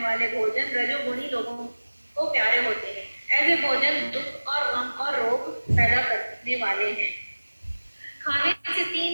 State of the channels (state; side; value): inverted; both; correlation -1.00